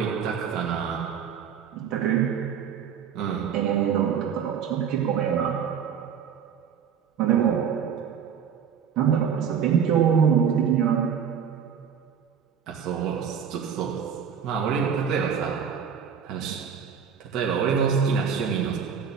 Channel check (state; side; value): quieter; left; 7.5 dB